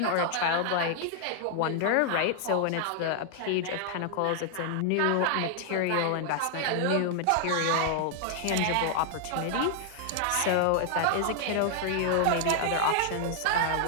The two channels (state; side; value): different; both; correlation 0.00